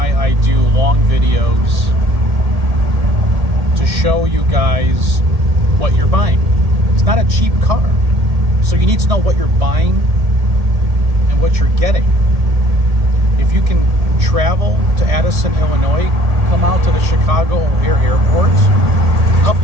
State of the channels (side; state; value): left; late; 1.8 ms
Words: I do long videos to show you guys what you're buying. It's not a cheap car. So you need to know what you're buying and what you're getting. If you can travel to Addison, Illinois, come out to the Chicago O'Hare Airport, I'll